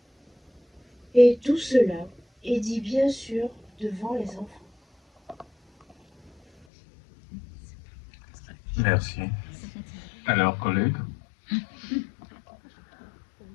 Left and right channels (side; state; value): right; drops out; at 6.7 s